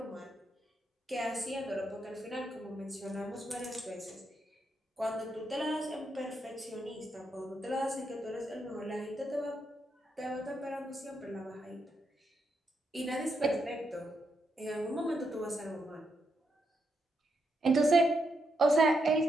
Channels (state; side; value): normal; both; correlation 0.81